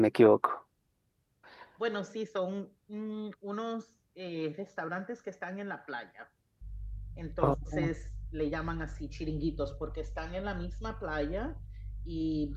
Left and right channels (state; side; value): identical; both; correlation 1.00